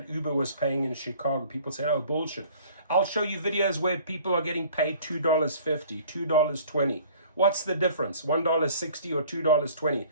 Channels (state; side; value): inverted; both; correlation -0.51